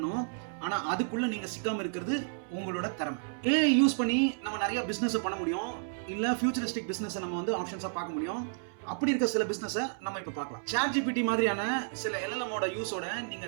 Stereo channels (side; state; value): left; silent; 57 dB below the other